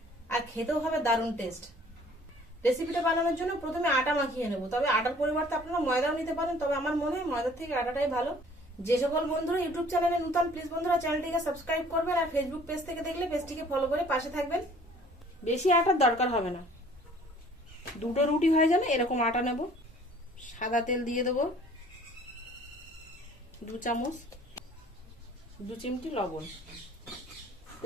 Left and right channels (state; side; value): normal; both; correlation 0.54